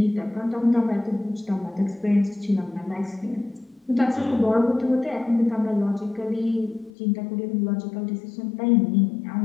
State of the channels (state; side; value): drops out; right; at 6.9 s